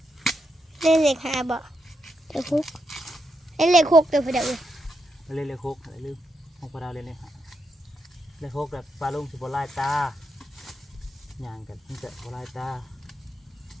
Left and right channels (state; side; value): normal; both; correlation 0.83